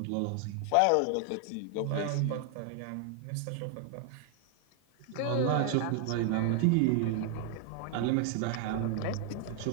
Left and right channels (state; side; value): different; both; correlation 0.00